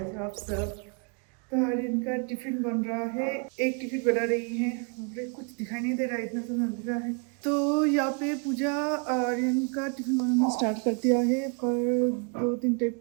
हो आप सब। तो आर्यन का टिफिन बन रहा है, एक टिफिन बना रही है। मुझे कुछ दिखाई नहीं दे रहा है, इतना तो अंधेरा है। तो यहाँ पे पूजा आर्यन का टिफिन बनाना स्टार्ट कर दिया है, पर 2-3 टाइप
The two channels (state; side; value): quieter; left; 37.5 dB